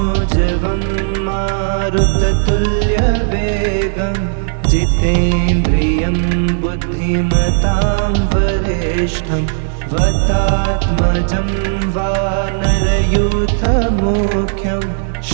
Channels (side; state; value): left; silent; digital silence